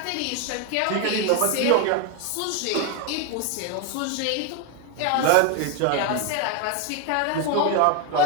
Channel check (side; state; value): both; different; correlation 0.02